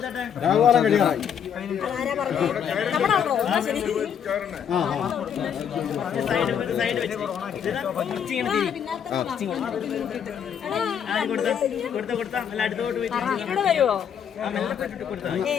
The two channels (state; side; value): quieter; right; 8.2 dB